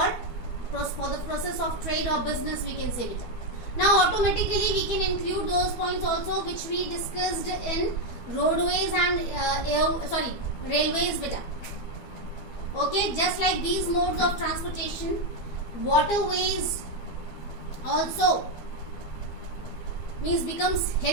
the process of trade or business, we can say, beta. Now automatically we can include those points also which we discussed in roadways and railways, beta. Okay, just like these modes of transportation, waterways also becomes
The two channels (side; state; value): right; late; 12 ms